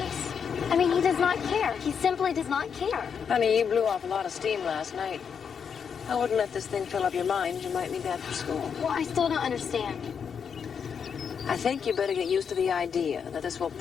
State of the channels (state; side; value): quieter; right; 6.9 dB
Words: I mean, he does not care. He simply does not care. Honey, you blew off a lot of steam last night. I wouldn't let this thing fill up your mind. You might need that for school. Well, I still don't understand. I think you better get used to the idea that this will